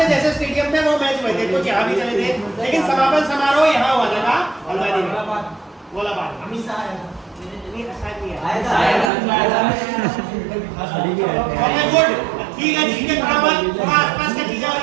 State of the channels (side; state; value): left; drops out; at 9.1 s